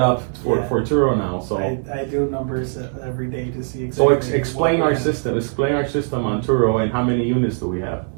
Yeah. for Turo now. So I do numbers every day to see so exactly. explain what we our have. system. Explain our system on Turo and how many units do we have?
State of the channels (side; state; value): left; silent; 62 dB below the other